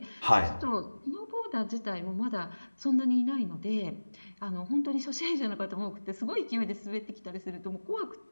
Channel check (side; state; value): both; inverted; correlation -1.00